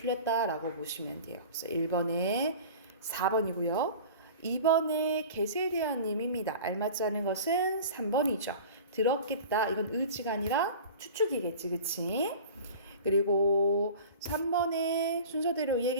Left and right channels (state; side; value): inverted; both; correlation -0.39